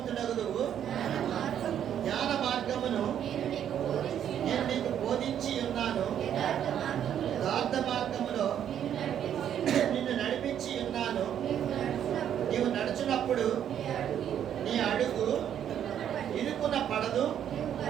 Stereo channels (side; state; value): left; quieter; 9.7 dB